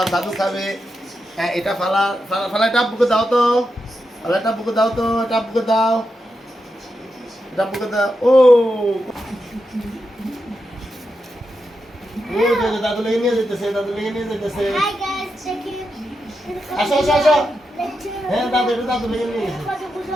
দাদু খাবে। হ্যাঁ, এটা ফালা ফালা ফালা এটা আব্বুকে দাও তো। ফালা এটা আব্বুকে দাও তো, এটা আব্বুকে দাও। এটা আব্বুকে দাও। ও ও দাদু লেগে নিয়ে যেতেছে, দাদু লেগে নিয়ে যেতেছে। Hi guys, check it. আসো আসো আসো। হ্যাঁ দাদু, এটা দাদু লেগে নিয়ে গেছে।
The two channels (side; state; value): both; normal; correlation 0.87